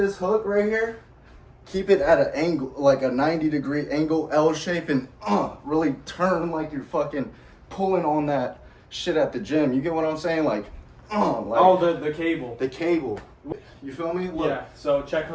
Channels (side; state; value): both; identical; correlation 1.00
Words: hook right here, keep it at an angle, like a 90-degree angle, L shape, and really turn like you're fucking pulling on that shit at the gym. You get what I'm saying? Like, the cable. The cable. You feel me? Look. Yeah, so check